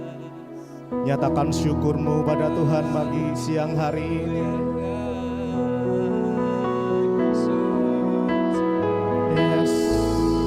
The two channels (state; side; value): identical; both; correlation 1.00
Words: Nyatakan syukur-Mu pada Tuhan pagi siang hari ini. Yes,